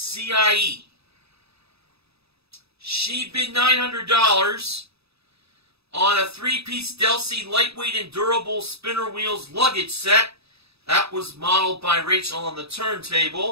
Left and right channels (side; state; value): left; late; 0.78 ms